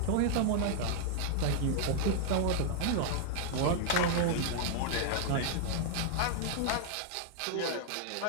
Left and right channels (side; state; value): both; different; correlation -0.01